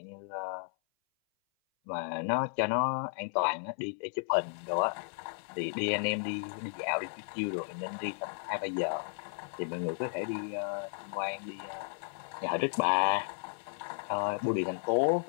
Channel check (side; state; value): right; silent; 55 dB below the other